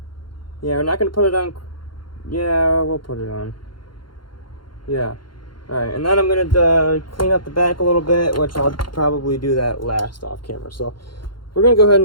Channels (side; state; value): right; late; 0.72 ms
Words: we're not going to put it on. Yeah, we'll put it on. Yeah. Alright, and then I'm going to clean up the back a little bit, which I'll probably do that last off camera. So we're going to go ahead